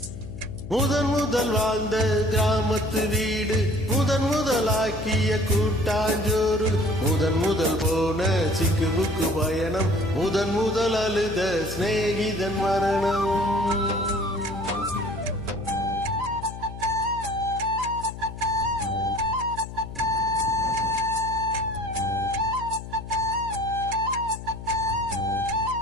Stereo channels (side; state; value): left; noise; hum, 11 dB below the sound